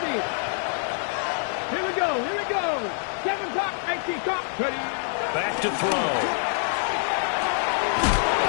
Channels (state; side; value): silent; right; 61 dB below the other